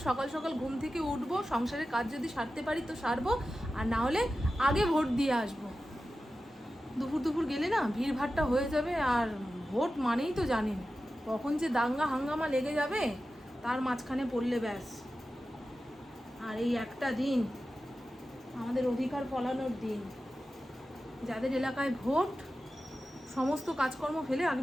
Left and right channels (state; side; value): normal; both; correlation 0.93